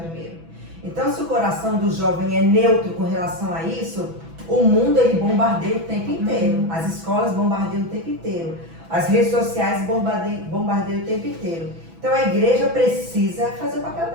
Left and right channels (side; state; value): left; late; 6.1 ms